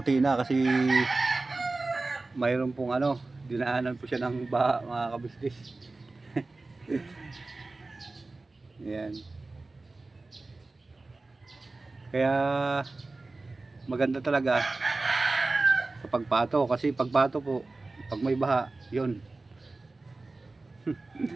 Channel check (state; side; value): quieter; left; 3.3 dB